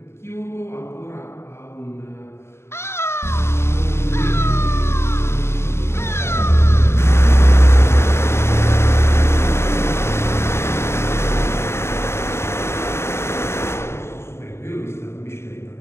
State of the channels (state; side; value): late; right; 0.12 ms